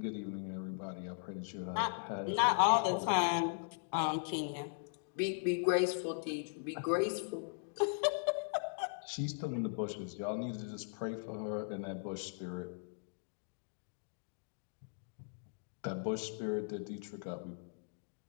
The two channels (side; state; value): right; silent; digital silence